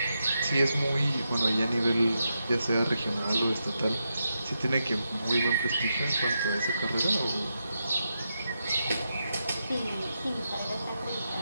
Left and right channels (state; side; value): inverted; both; correlation -0.86